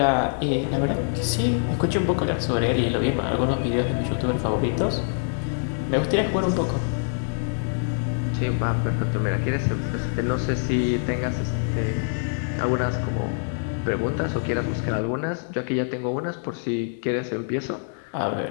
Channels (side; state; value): right; silent; digital silence